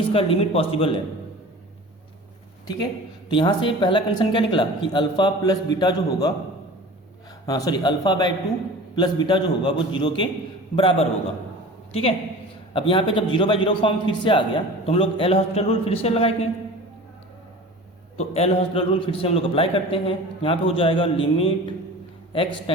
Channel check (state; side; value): normal; both; correlation 0.38